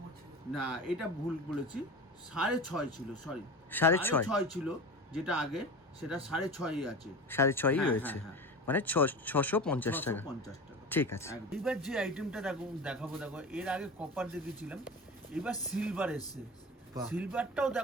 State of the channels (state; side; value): normal; both; correlation 0.31